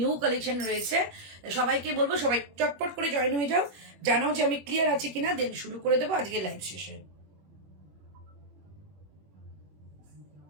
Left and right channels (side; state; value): left; late; 21 ms